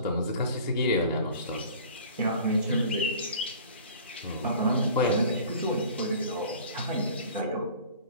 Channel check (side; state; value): both; inverted; correlation -0.45